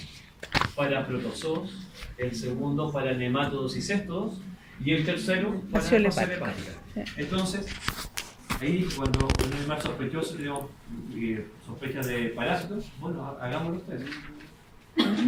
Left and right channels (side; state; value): both; identical; correlation 1.00